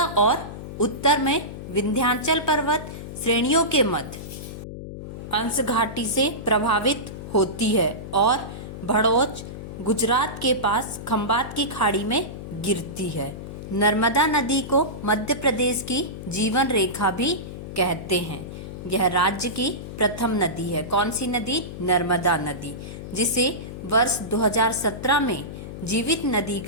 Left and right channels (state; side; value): noise; left; hum, 10 dB below the sound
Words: और उत्तर में विंध्याचल पर्वत श्रेणियों के मध्य अंश घाटी से प्रभावित होती है और भड़ोच गुजरात के पास खंबात की खाड़ी में गिरती है। नर्मदा नदी को मध्य प्रदेश की जीवन रेखा भी कहते हैं। यह राज्य की प्रथम नदी है। कौन सी नदी? नर्मदा नदी, जिसे वर्ष 2017 में जीवित नदी